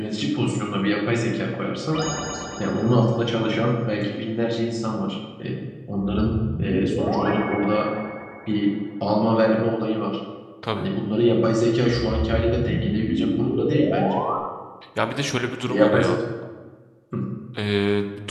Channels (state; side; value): identical; both; correlation 1.00